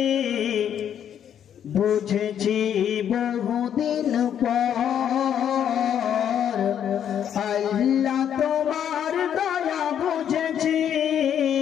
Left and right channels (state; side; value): quieter; right; 9.3 dB